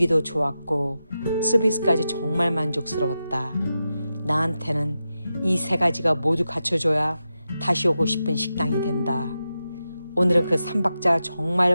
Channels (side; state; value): both; inverted; correlation -0.90